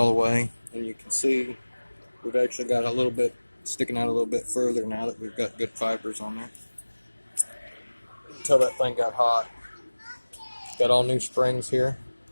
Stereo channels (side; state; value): both; inverted; correlation -1.00